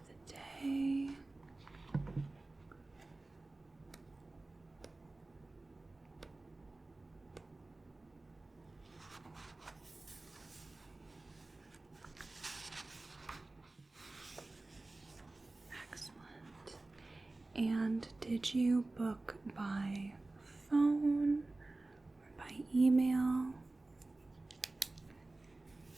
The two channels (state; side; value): quieter; left; 3.1 dB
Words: the day. Excellent. And did you book by phone or by email?